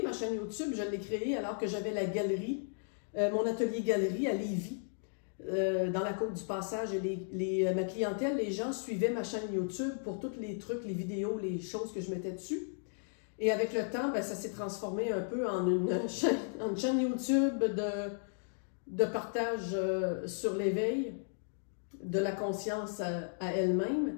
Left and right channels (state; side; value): silent; right; digital silence